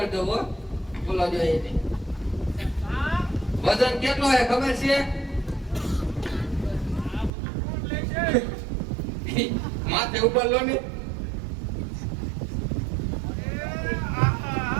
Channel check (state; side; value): drops out; left; at 7.3 s